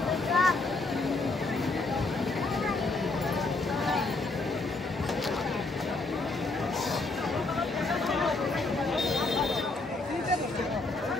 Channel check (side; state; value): right; quieter; 3.3 dB